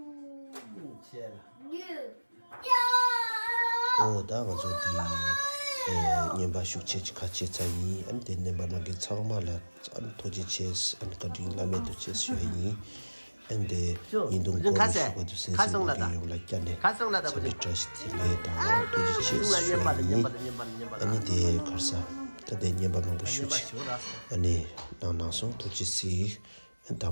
다가 저기 년바 숙제지 같이 자니 안 되는 바나게 처음말라 안 도지체스 안 거딩 라메도 체스여니 근데 인동 거기서도 가성나다 가성나다 보지 트러스트레다 도지체스 아니 데 걸사 근데 년바만 보시지 아니 나나서 도지시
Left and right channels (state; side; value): inverted; both; correlation -1.00